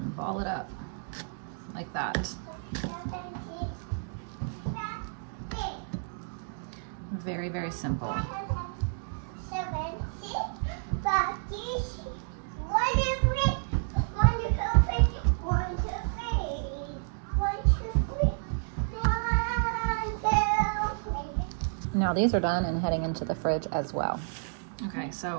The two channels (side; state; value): left; silent; digital silence